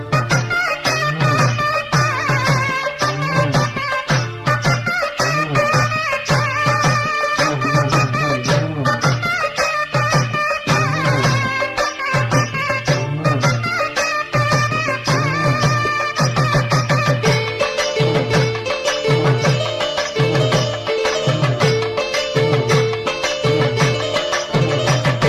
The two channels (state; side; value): identical; both; correlation 1.00